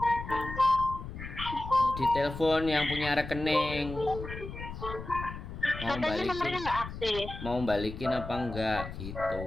Ditelepon yang punya rekening. Katanya nomornya nggak aktif. Mau balikin apa enggak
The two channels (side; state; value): left; noise; rumble, 9 dB below the sound